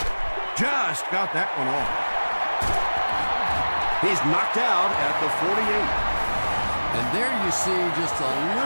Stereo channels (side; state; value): both; inverted; correlation -1.00